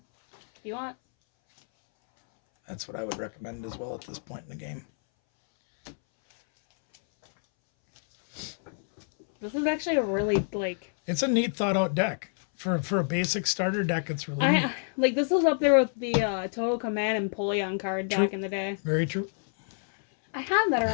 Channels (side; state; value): right; silent; 60 dB below the other